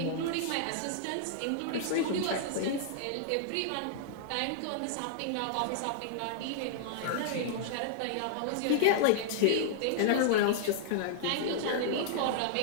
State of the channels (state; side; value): different; both; correlation -0.01